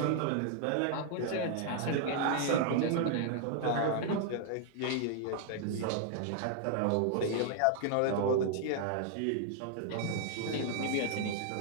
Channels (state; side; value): different; both; correlation 0.00